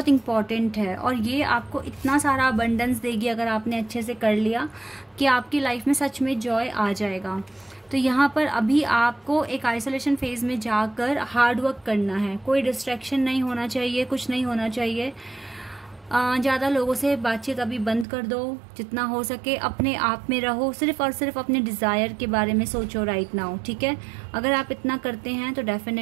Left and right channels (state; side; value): drops out; left; at 18.1 s